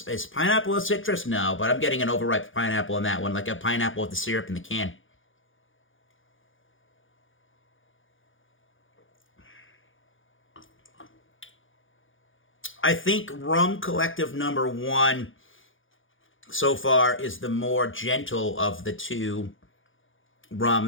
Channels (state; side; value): late; right; 0.58 ms